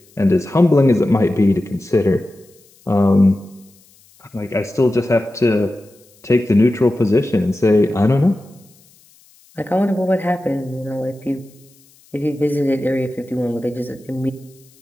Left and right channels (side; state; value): left; noise; hiss, 30 dB below the sound